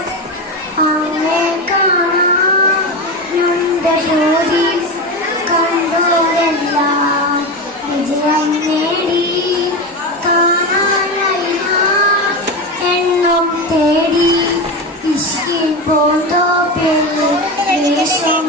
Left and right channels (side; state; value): both; normal; correlation 0.20